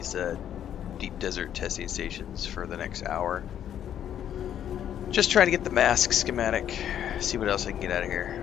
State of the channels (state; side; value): quieter; right; 10.1 dB